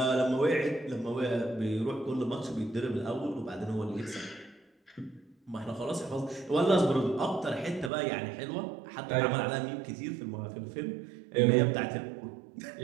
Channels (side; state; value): left; drops out; at 7.9 s